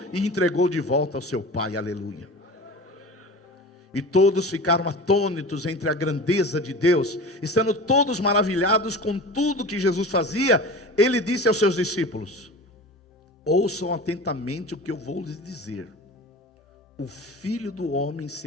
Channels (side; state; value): both; normal; correlation 0.34